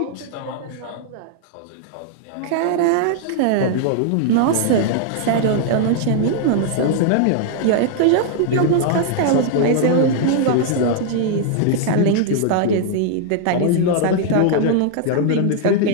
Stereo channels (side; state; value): both; different; correlation -0.01